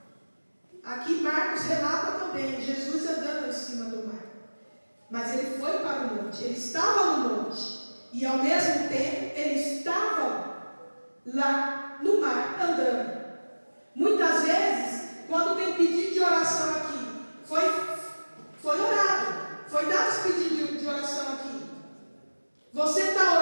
Aqui Marcos relata também Jesus andando em cima do mar. Mas ele foi para o monte, ele estava no monte. E ao mesmo tempo ele estava lá no mar andando. Muitas vezes, quando tem pedido de oração aqui, foi orado, foi dado esse pedido de oração aqui. Você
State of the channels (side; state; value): both; inverted; correlation -1.00